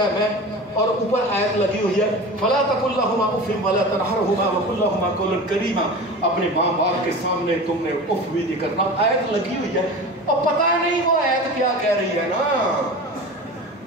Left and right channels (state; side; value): normal; both; correlation 0.33